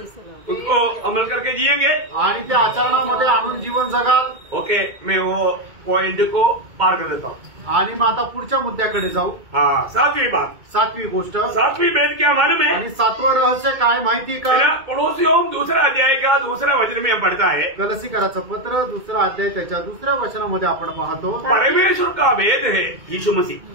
उसको अमल करके जिएंगे आणि ते आचरणामध्ये आणून जीवन जगाल। ओके, मैं वो पॉइंट को पार कर देता हूँ। आणि मग आता पुढच्या मुद्द्याकडे जाऊ। हाँ, 7वीं बात, 7वी गोष्ट, 7वीं भेद क्या मालूम है? आणि 7वं रहस्य काय माहिती का? पड़ोसियों 2 अध्याय का 2 वचन में हम पढ़ता है, गलसीकराचं पत्र 2 अध्याय त्याच्या 2 वचनामध्ये आपण पाहतो, परमेश्वर का भेद है यीशु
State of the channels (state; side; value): late; left; 2.2 ms